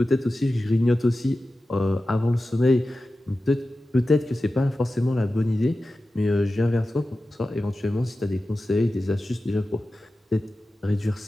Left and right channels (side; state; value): both; normal; correlation 0.94